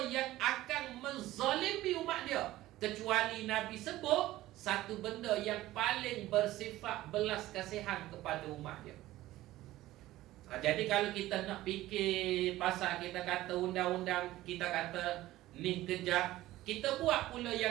yang akan menzalimi umat dia, kecuali Nabi sebut satu benda yang paling bersifat belas kasihan kepada umat dia. Jadi kalau kita nak fikir pasal kita kata undang-undang, kita kata ni kejap, kita buat pula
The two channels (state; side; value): quieter; left; 16.1 dB